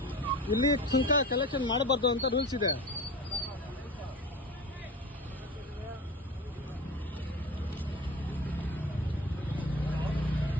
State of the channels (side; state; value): both; normal; correlation 0.34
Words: ಇಲ್ಲಿ ಸುಂಕ ಕಲೆಕ್ಷನ್ ಮಾಡಬಾರ್ದು ಅಂತ ರೂಲ್ಸ್ ಇದೆ.